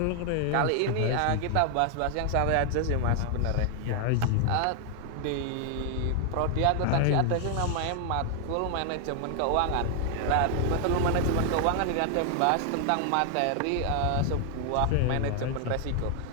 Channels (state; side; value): different; both; correlation 0.00